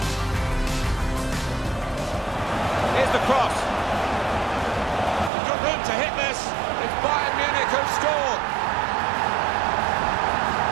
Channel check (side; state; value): left; drops out; at 5.3 s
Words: The cross. Good room to hit this. It's Bayern Munich who scored.